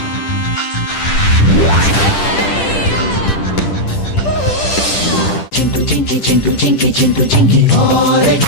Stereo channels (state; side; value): late; right; 10 ms